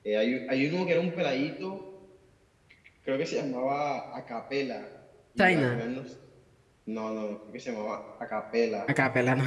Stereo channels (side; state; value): both; identical; correlation 1.00